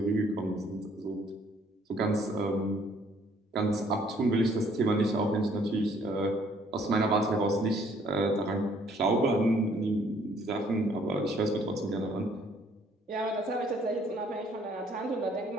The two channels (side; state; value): both; normal; correlation 0.63